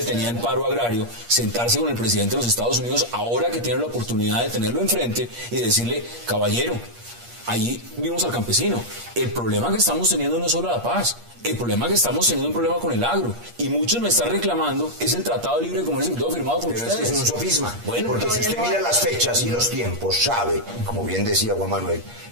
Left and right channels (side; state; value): left; late; 8.5 ms